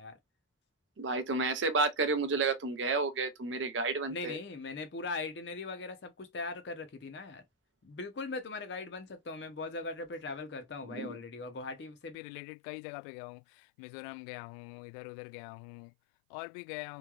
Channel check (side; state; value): right; drops out; at 12.2 s